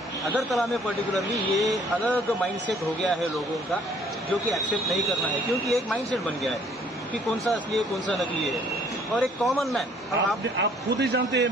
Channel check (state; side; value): normal; both; correlation 0.60